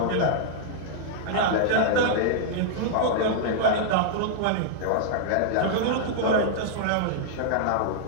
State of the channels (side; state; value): both; different; correlation -0.01